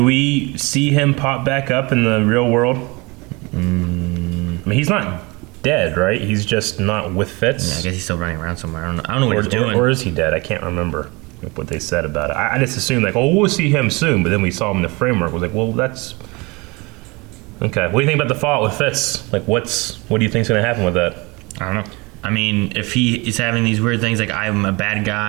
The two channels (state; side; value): quieter; left; 25.8 dB